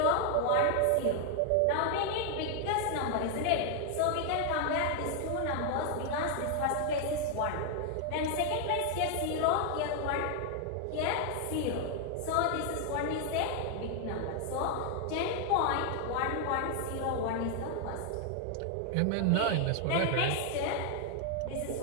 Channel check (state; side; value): different; both; correlation 0.00